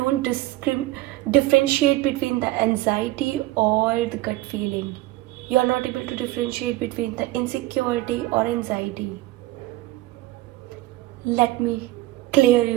differentiate between the anxiety or the gut feeling. You are not able to differentiate between the insecurity or anxiety. Let me clear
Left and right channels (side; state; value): left; quieter; 17.1 dB